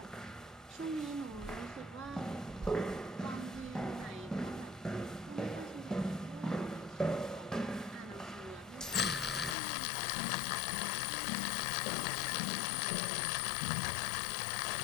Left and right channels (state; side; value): drops out; right; at 9.6 s